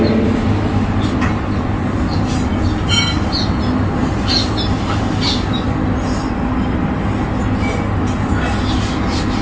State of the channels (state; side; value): identical; both; correlation 1.00